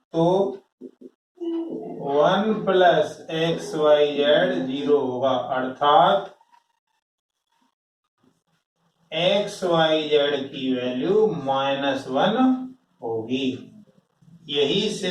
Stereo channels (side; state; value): both; identical; correlation 1.00